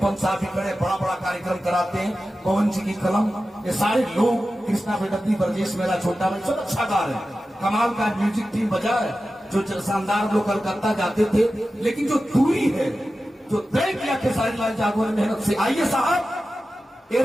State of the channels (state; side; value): normal; both; correlation 0.93